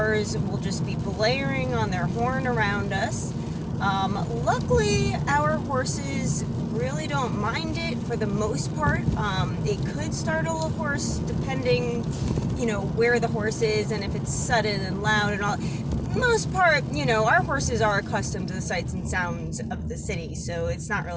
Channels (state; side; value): identical; both; correlation 1.00